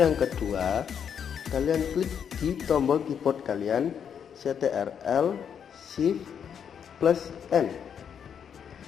kedua, kalian klik di tombol keyboard kalian Ctrl Shift plus N.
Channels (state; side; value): quieter; right; 7.8 dB